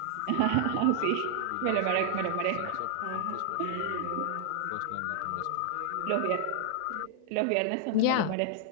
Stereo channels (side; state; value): both; different; correlation 0.00